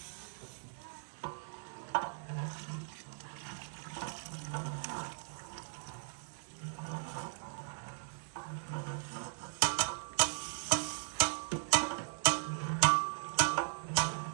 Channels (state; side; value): silent; left; digital silence